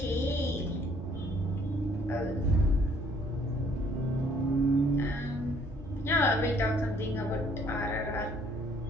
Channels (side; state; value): both; normal; correlation 0.62